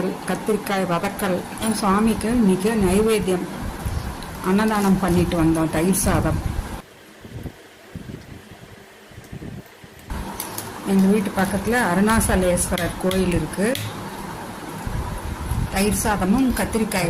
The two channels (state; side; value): identical; both; correlation 1.00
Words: கத்திரிக்காய் வதக்கல். சுவாமிக்கு இன்னைக்கு நைவேத்தியம் அன்னதானம் பண்ணிட்டு வந்தோம். தயிர் சாதம். எங்கள் வீட்டு பக்கத்தில் அருணாசலேஸ்வரர் கோயில் இருக்குது. தயிர் சாதமும்